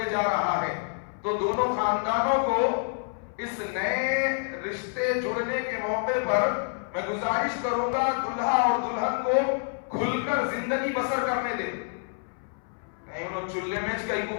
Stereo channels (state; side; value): silent; right; 60 dB below the other